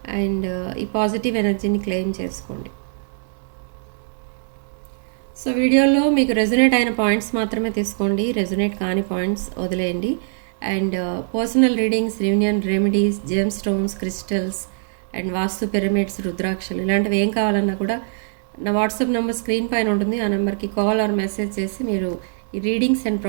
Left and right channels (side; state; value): left; silent; digital silence